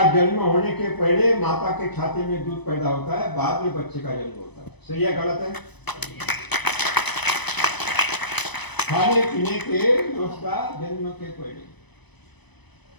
जन्म होने के पहले माता के छाती में दूध पैदा होता है, बाद में बच्चे का जन्म होता है। सही है गलत है? खाने पीने के व्यवस्था जन्म के पहले।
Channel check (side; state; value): right; late; 0.99 ms